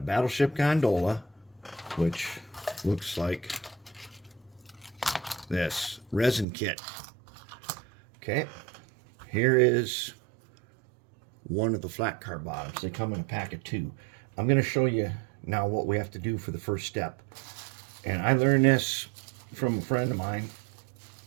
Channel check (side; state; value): left; drops out; at 6.5 s